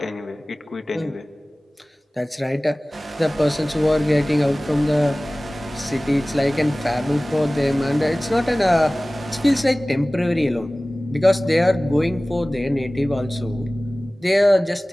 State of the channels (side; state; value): both; normal; correlation 0.98